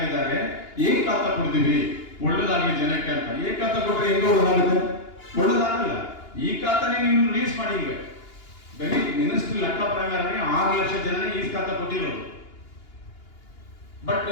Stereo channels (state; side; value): late; right; 2.8 ms